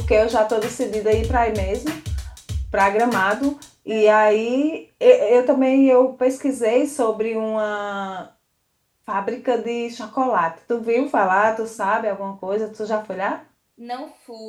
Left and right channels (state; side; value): identical; both; correlation 1.00